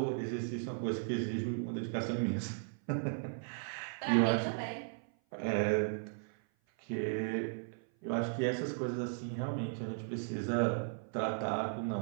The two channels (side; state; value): left; silent; 54 dB below the other